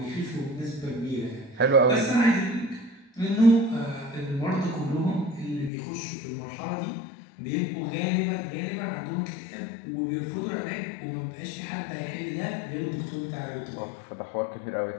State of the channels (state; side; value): drops out; right; at 5.7 s